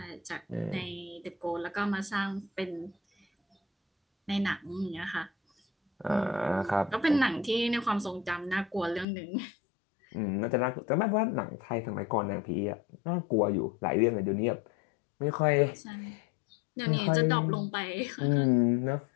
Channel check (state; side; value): drops out; right; at 9.1 s